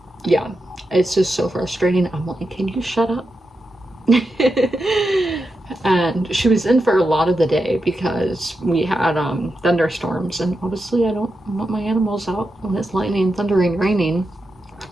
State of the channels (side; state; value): both; normal; correlation 0.88